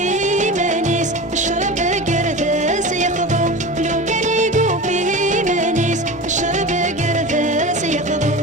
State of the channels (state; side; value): normal; both; correlation 0.30